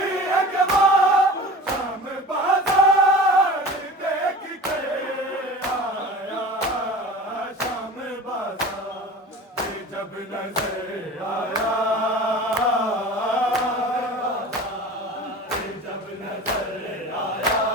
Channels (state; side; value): normal; both; correlation 0.37